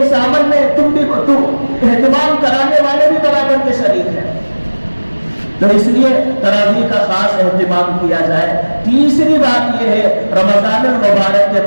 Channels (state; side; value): inverted; both; correlation -1.00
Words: عمل میں تم اہتمام کرانے والے بھی برابر کے شریک ہیں۔ تو اس لیے تراویح کا خاص اہتمام کیا جائے۔ تیسری بات یہ ہے، رمضان المبارک کے